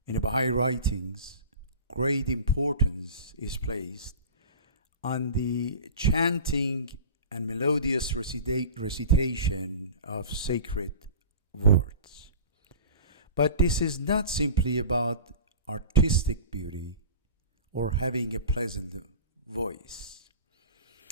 In the Baha'i writings, great importance is placed on the chanting and melodious recitation of sacred words. But this is not simply about artistic beauty or having a pleasant voice.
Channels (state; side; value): inverted; both; correlation -0.37